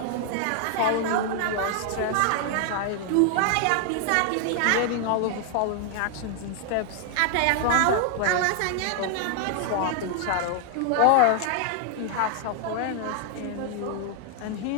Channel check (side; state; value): both; different; correlation 0.00